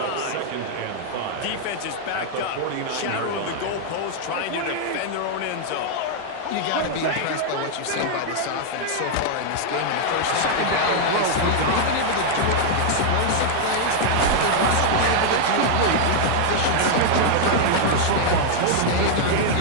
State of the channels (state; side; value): different; both; correlation 0.00